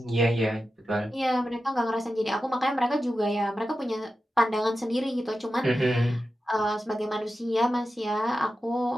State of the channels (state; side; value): normal; both; correlation 0.92